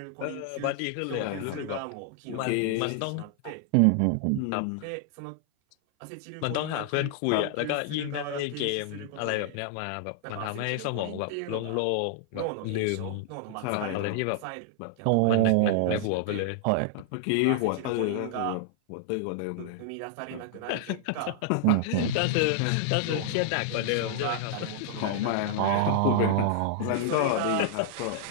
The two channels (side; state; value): both; different; correlation -0.01